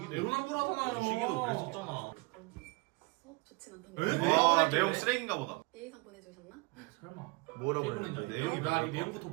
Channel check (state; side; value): quieter; left; 26.0 dB